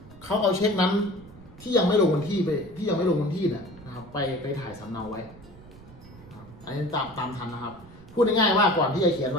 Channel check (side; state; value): right; noise; rumble, 20 dB below the sound